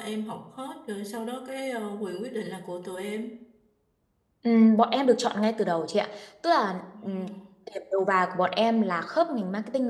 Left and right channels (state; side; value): identical; both; correlation 1.00